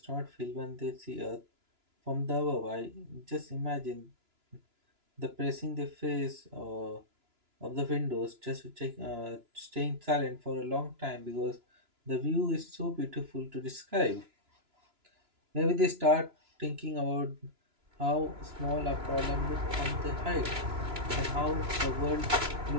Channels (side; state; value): left; late; 2.9 ms